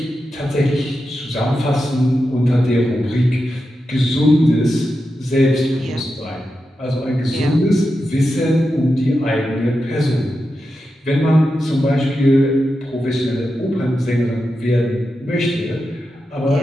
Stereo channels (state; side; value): normal; both; correlation 0.89